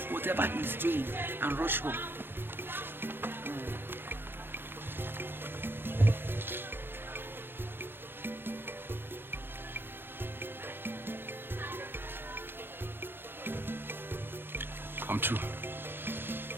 whatever he's doing and rush home. I'm true.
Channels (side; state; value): left; late; 0.098 ms